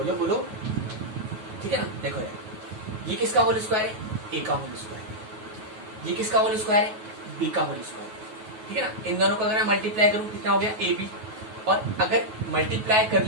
बोलो, ठीक है ना। देखो इधर, ये किसका होल स्क्वायर है, a का होल स्क्वायर, ये किसका होल स्क्वायर है, b का होल स्क्वायर, ठीक है ना। इन दोनों को अगर मैं मल्टीप्लाई करूं कितना हो गया ab, और अगर मल्टीप्लाई कर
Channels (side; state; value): left; late; 9.3 ms